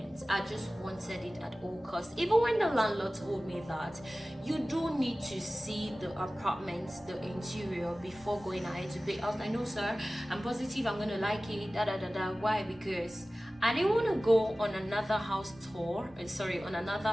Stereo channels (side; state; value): both; normal; correlation 0.97